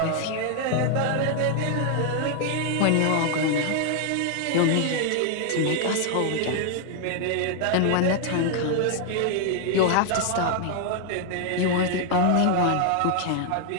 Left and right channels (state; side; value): different; both; correlation 0.00